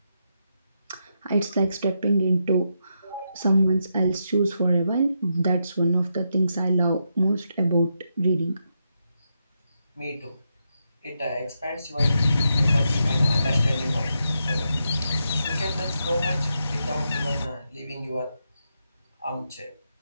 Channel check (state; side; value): inverted; both; correlation -0.83